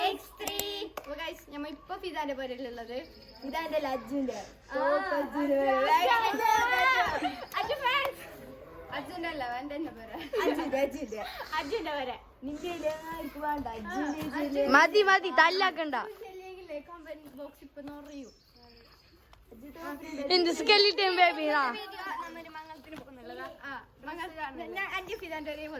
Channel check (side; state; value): both; identical; correlation 1.00